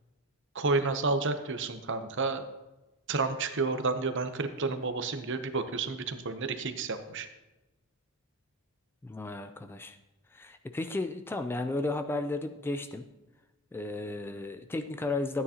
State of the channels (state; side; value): normal; both; correlation 0.18